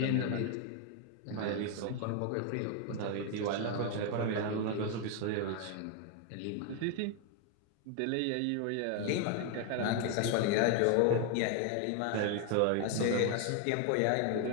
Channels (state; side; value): different; both; correlation 0.01